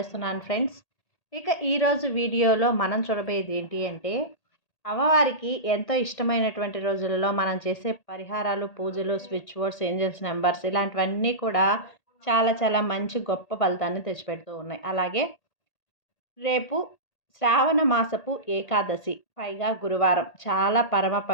ఫ్రెండ్స్. ఇక ఈరోజు వీడియోలో మనం చూడబోయేది ఏంటి అంటే, అమ్మవారికి ఎంతో ఇష్టమైనటువంటి రోజులలో మనం చేసే పరిహారాలు, పూజలు, స్విచ్ బోర్డ్స్, ఏంజల్స్ నెంబర్స్ ఇలాంటివన్నీ కూడా చాలా చాలా మంచి గొప్ప ఫలితాన్ని తెచ్చిపెడుతూ ఉన్నాయి. అలాగే రేపు శ్రావణ మాసపు ఏకాదశి, పైగా గురువారం, చాలా పరమ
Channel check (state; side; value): late; right; 1.8 ms